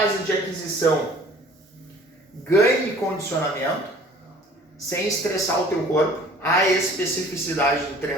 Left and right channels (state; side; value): normal; both; correlation 0.50